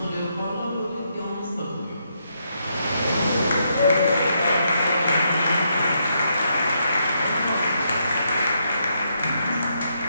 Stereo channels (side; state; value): both; inverted; correlation -0.77